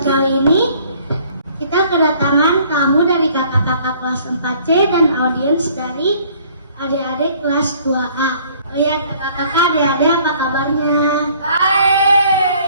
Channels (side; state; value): both; inverted; correlation -0.57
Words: kali ini, kita kedatangan tamu dari kakak-kakak kelas 4C dan audiens dari adik-adik kelas 2A. Oh ya, kakak-kakak, adik-adik, apa kabarnya?